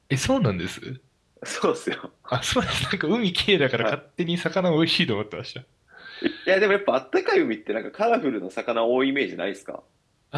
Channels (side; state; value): both; identical; correlation 1.00